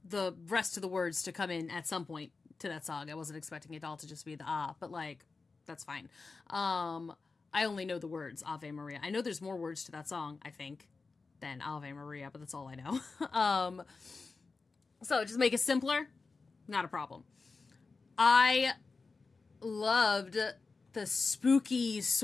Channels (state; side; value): quieter; right; 4.2 dB